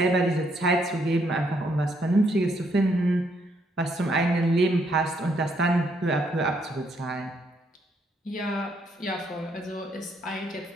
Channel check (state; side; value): normal; both; correlation 0.73